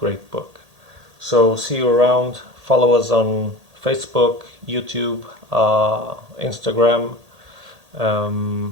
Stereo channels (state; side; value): late; left; 1.8 ms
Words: book. So see you around. Follow us on Facebook, YouTube, Instagram,